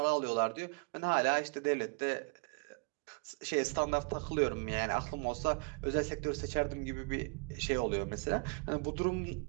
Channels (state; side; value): quieter; left; 32.8 dB